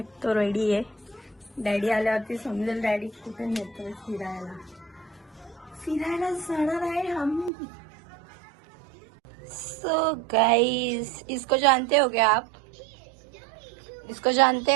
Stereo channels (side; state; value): left; drops out; at 7.5 s